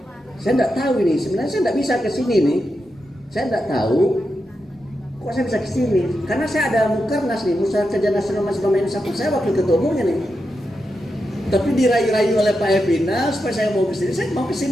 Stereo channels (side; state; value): both; normal; correlation 0.87